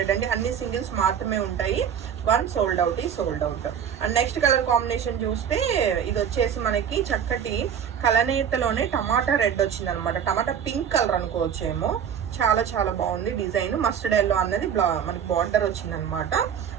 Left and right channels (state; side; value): quieter; left; 8.3 dB